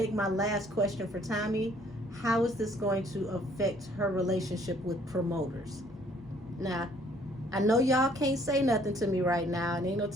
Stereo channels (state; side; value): normal; both; correlation 0.61